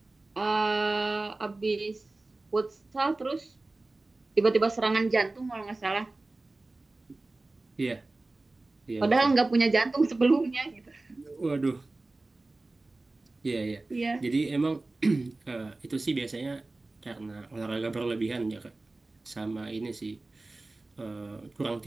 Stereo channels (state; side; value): quieter; left; 3.1 dB